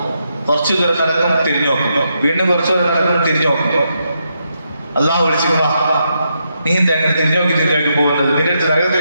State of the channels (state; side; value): inverted; both; correlation -0.81